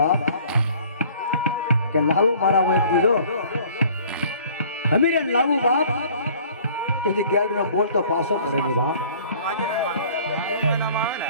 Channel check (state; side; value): inverted; both; correlation -0.52